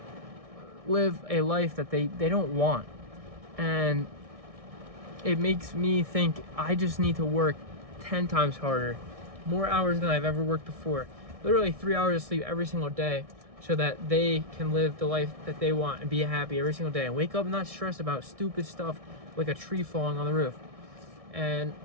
live a life that they don't want. And it makes me think I just need to work 10 times harder, more hours than I've ever worked before, literally 3 hours of sleep every single day, so that they can live the life that they want and be happy every single day and wake up not stressed about stupid stuff like a tree falling on the roof. And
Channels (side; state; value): left; late; 1.6 ms